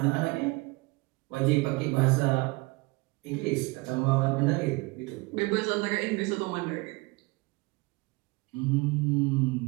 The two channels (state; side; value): quieter; left; 25.2 dB